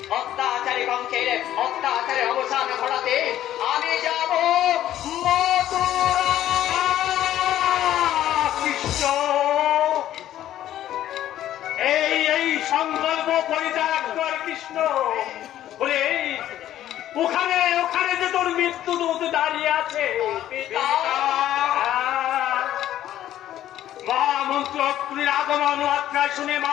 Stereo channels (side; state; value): right; quieter; 12.4 dB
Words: অত্যাচারী বংশের অত্যাচারের অবসান ঘটাতে আমি যাব মথুরা। কৃষ্ণ, এই সংকল্প পরিত্যাগ কর কৃষ্ণ। বলে ওখানে ওখানে যে তোর মৃত্যু দূত দাঁড়িয়ে আছে। মহামন্ত্র অক্রুর আগমন মাত্রায় শুনে মা